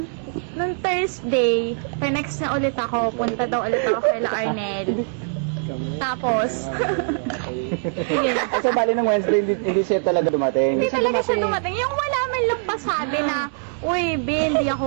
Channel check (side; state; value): left; silent; digital silence